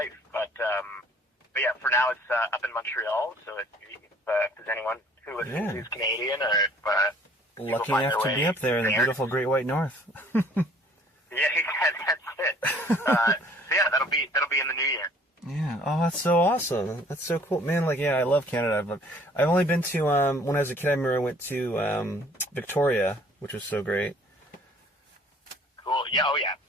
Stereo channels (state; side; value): normal; both; correlation 0.56